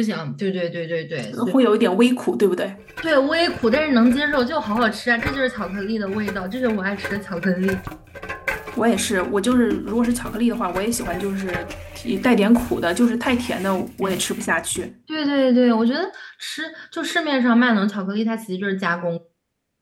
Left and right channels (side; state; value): both; identical; correlation 1.00